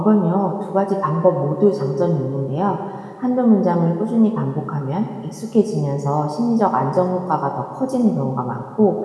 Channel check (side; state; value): both; identical; correlation 1.00